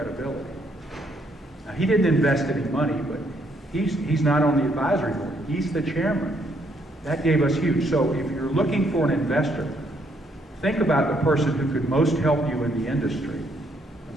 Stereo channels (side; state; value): both; normal; correlation 0.71